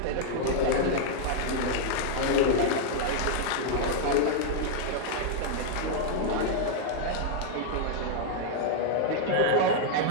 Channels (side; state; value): both; different; correlation 0.00